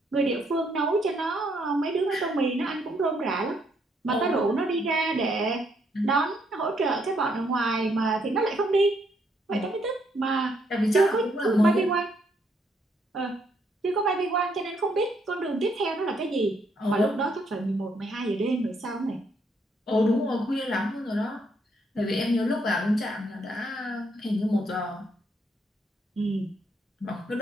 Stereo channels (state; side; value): normal; both; correlation 0.72